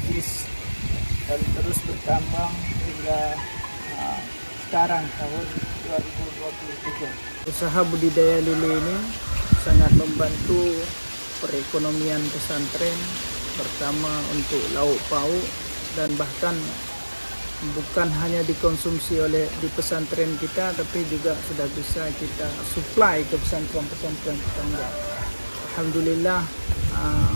dan terus berkembang hingga sekarang tahun 2023. Usaha budidaya lele ini sangat membantu perekonomian pesantren, pertama untuk lauk pauk dan bahkan bukan hanya dikonsumsi oleh di pesantren kita, tapi juga sudah bisa kita supply ke pesantren-pesantren tetangga. Alhamdulillah,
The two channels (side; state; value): both; inverted; correlation -1.00